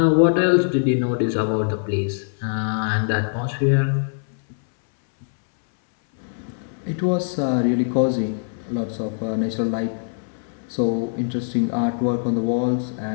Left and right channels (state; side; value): silent; right; 64 dB below the other